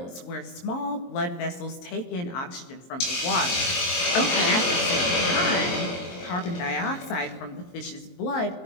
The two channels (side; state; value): right; late; 23 ms